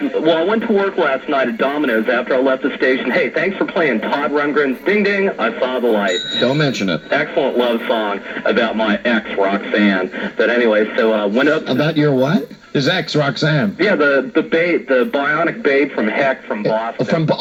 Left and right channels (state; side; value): identical; both; correlation 1.00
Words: went to work last night at Domino's after I left the station. Hey, thanks for playing Todd Rundgren's Ding Ding, I Saw the Light. Don't mention it. Excellent love song about my ex, Roxanne. But anyway, so I went up... About your what? His ex, Roxanne. Yeah, the bionic babe from Heck from Boston.